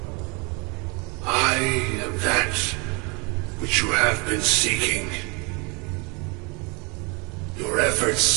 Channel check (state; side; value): quieter; left; 30.5 dB